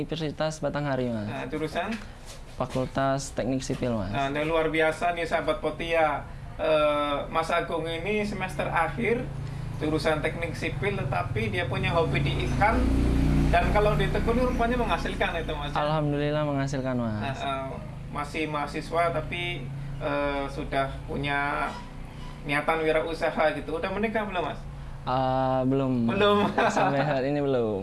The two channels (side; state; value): both; identical; correlation 1.00